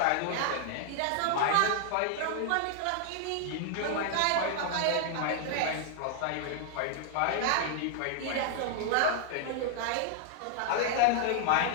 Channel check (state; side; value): different; both; correlation 0.00